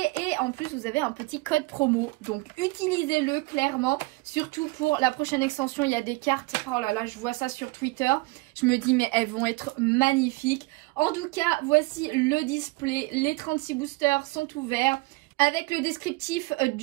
en plus vous avez un petit code promo, donc utilisez-le clairement, surtout pour la prochaine extension. Il y a des cartes, oh là là, je vois ça sur Twitter, je me dis mais elles vont être magnifiques. En tout cas voici le display, les 36 boosters sont ouverts avec le descriptif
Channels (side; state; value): left; quieter; 24.0 dB